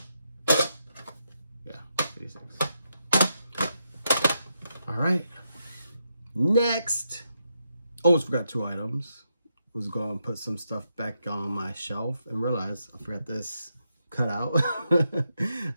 Yeah, 56. All right. Next. Almost forgot 2 items. Was going to put some stuff back on my shelf and realized I forgot this cutout.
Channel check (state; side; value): inverted; both; correlation -0.82